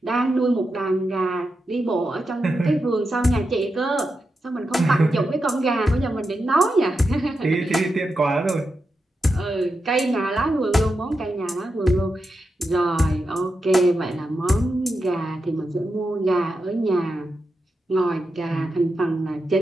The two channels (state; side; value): normal; both; correlation 0.88